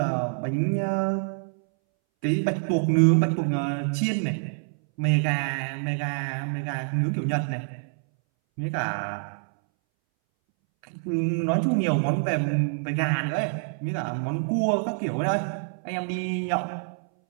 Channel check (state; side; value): silent; left; 61 dB below the other